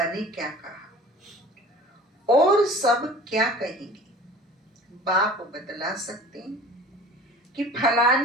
ने क्या कहा और सब क्या कहेंगे। बाप बतला सकते हैं कि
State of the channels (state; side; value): normal; both; correlation 0.44